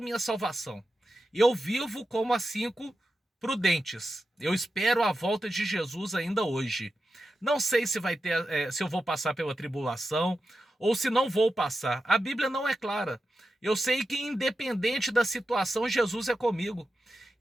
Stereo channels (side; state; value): both; normal; correlation 0.90